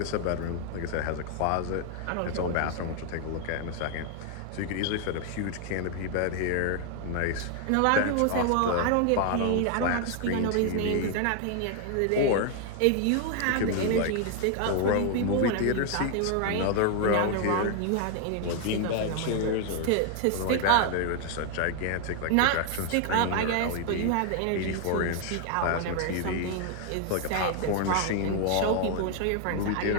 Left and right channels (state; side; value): different; both; correlation 0.00